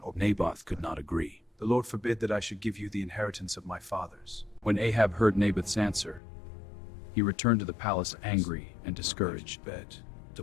Naboth could not agree. The Lord forbid that I should give you the inheritance of my fathers. When Ahab heard Naboth's answer, he returned to the palace angry and discouraged. The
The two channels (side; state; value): right; drops out; at 6.2 s